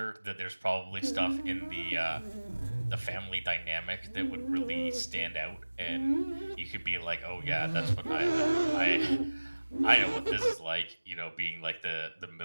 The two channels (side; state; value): both; inverted; correlation -1.00